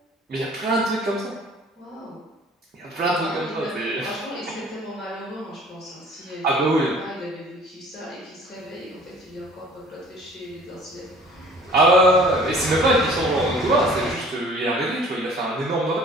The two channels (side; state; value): both; normal; correlation 0.52